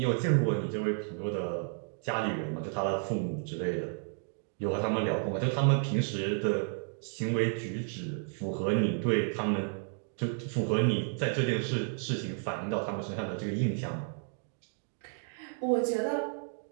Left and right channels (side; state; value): left; silent; 56 dB below the other